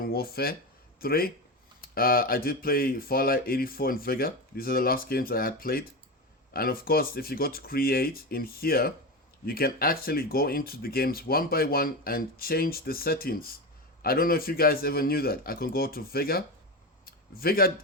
Warfare 3. I did play Fallout 84 and Vega. These are the last games I had played. And of course, if you go to create in here, you can actually go into the games one by one and change the settings. I don't know if you guys ever knew that. I can go to Vega. Vega,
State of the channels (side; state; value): both; normal; correlation 0.20